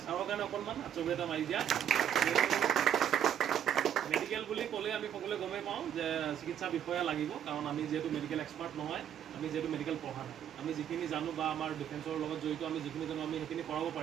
চাৰৰ কাৰণে অকণমান আচৰিত এটা মাৰি দিয়া মেডিকেল বুলি ক'লে আমি সকলোৱে গমেই পাওঁ যে চিকিৎসা বিষয়া লাগিব কাৰণ আমি যিহেতু মেডিকেল এক্সপাৰ্ট নহয় আমি যিহেতু মেডিকেল পঢ়া নাই আমি যিখিনি জানো বা আমাৰ ডিফেন্সৰ লগত জড়িত আমি যিখিনি জানো আমি সেইখিনি কৰাব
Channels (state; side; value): quieter; left; 9.6 dB